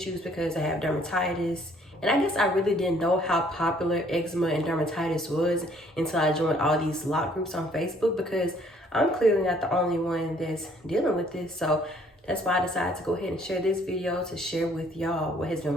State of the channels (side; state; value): both; normal; correlation 0.62